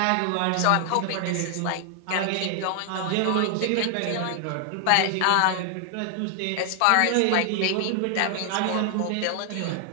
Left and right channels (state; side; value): different; both; correlation 0.00